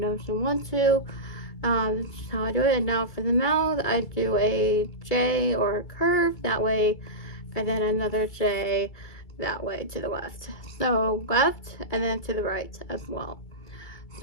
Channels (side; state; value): right; late; 2.3 ms